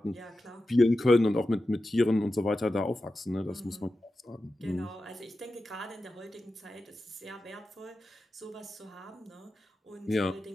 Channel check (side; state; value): both; normal; correlation 0.92